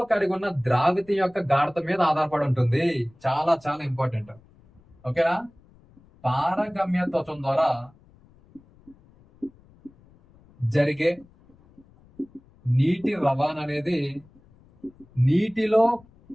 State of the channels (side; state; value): left; noise; rumble, 28 dB below the sound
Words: కలిగి ఉన్న ద్రావిత యొక్క గాఢత మీద ఆధారపడి ఉంటుంది. చాలా చాలా ఇంపార్టెంట్. ఓకేనా, పారగమ్య త్వచం ద్వారా జరిగే నీటి రవాణా అనేది నీటిలో